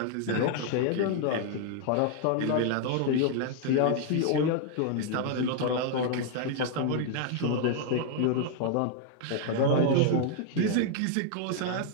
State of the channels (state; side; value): different; both; correlation 0.00